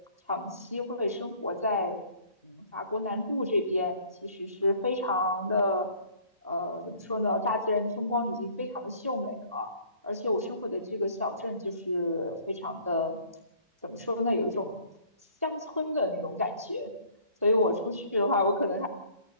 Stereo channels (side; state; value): both; inverted; correlation -0.55